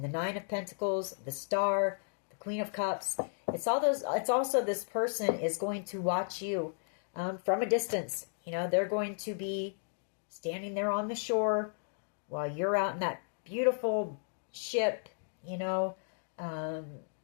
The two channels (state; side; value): silent; right; digital silence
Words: the Nine of Pentacles, the Star, the Queen of Cups. It's also this person is going to watch you from a distance. You know, they're going to be standing there on the shore while you're out in that beautiful ship